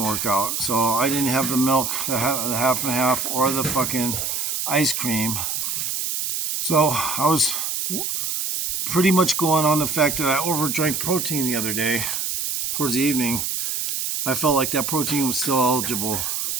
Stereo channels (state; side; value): noise; right; hiss, 2 dB below the sound